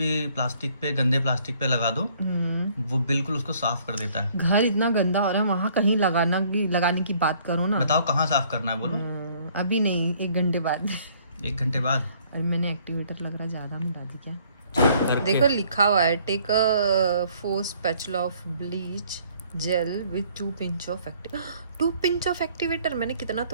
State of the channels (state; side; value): inverted; both; correlation -0.61